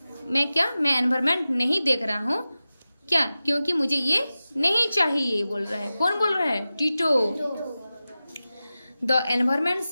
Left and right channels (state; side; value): inverted; both; correlation -0.95